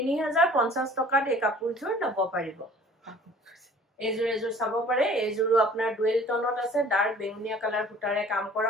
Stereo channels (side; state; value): both; normal; correlation 0.50